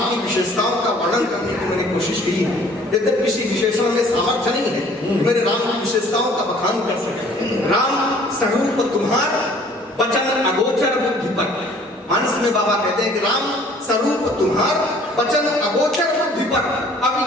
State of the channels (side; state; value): both; normal; correlation 0.55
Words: की विशेषताओं का वर्णन करने की मैंने कोशिश की। यद्यपि किसी विशेषण में सामर्थ्य नहीं है मेरे राम की विशेषताओं का बखान कर सके। राम स्वरूप तुम्हार वचन अगोचर बुद्धि पर। मानस में बाबा कहते हैं कि राम स्वरूप तुम्हार वचन अगोचर बुद्धि पर